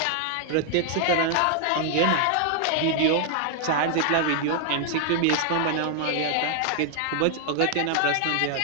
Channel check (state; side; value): different; both; correlation 0.00